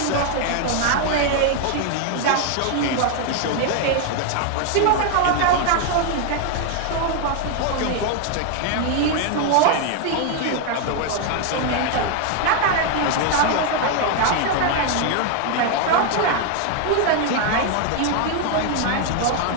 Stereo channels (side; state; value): both; different; correlation 0.00